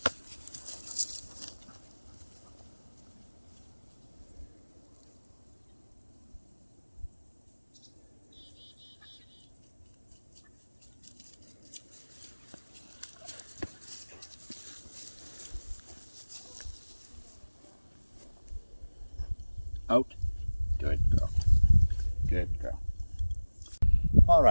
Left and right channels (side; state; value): both; inverted; correlation -1.00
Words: Out. Good girl. Good girl. All